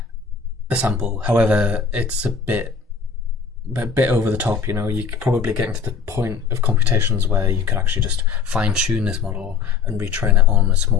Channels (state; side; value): quieter; right; 5.7 dB